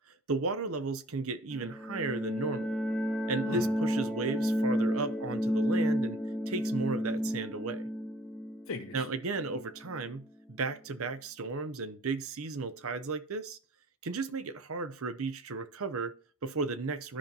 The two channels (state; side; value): normal; both; correlation 0.51